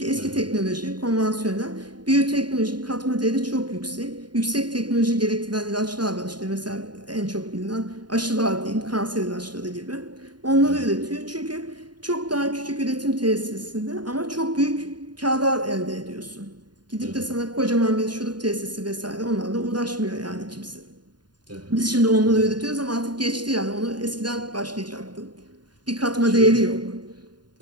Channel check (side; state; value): left; late; 0.70 ms